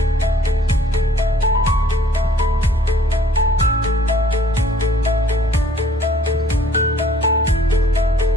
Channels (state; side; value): normal; both; correlation 0.58